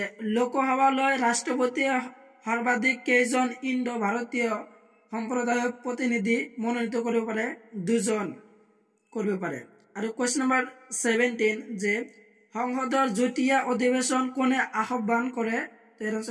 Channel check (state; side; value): identical; both; correlation 1.00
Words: লোকসভালৈ ৰাষ্ট্ৰপতিয়ে সৰ্বাধিক কেইজন ইণ্ডো ভাৰতীয় সম্প্ৰদায়ক প্ৰতিনিধি মনোনীত কৰিব পাৰে 2 জন কৰিব পাৰে আৰু question number 17 যে সংসদৰ যুটীয়া অধিৱেশন কোনে আহ্বান কৰে তাৰ